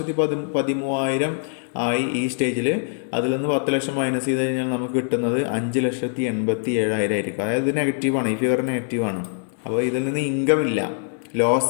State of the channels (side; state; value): right; silent; 62 dB below the other